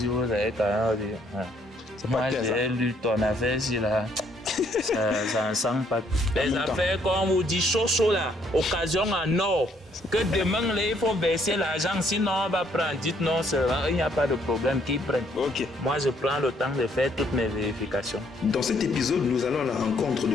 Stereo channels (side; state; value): both; normal; correlation 0.67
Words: vous avez quand même dit, moi j'ai lu ton affaire ici là. Ça ne sent pas. Les affaires, comme on vous dit, chaud là, occasion en or. Que demain, là, il faut verser l'argent, sinon on va prendre. Dites non, il n'y a pas de problème, qu'ils prennent. Moi, je prends le temps de faire toutes mes vérifications. Dans cet épisode, nous allons à la rencontre de